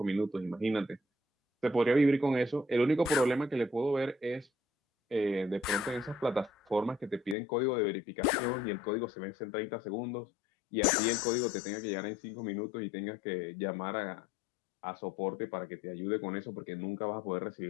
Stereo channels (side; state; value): right; drops out; at 7.4 s